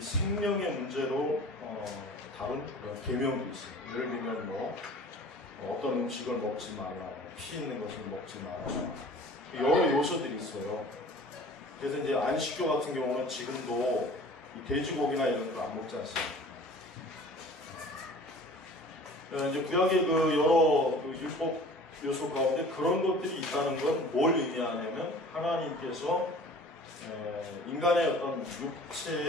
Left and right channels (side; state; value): both; normal; correlation 0.45